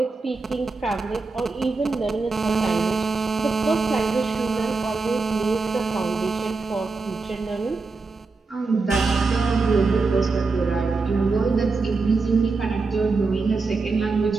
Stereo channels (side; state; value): left; quieter; 4.1 dB